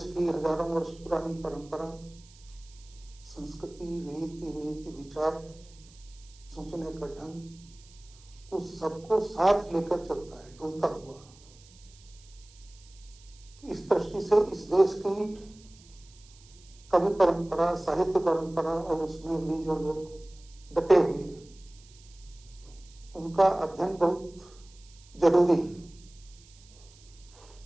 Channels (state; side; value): noise; right; hiss, 25 dB below the sound